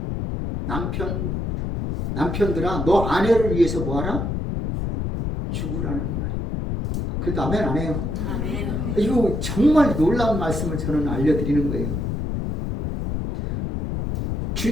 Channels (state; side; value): noise; left; rumble, 2 dB below the sound